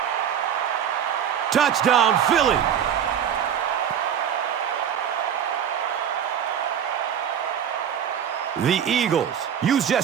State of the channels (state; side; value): quieter; left; 8.8 dB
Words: Touchdown, Philly. The Eagles use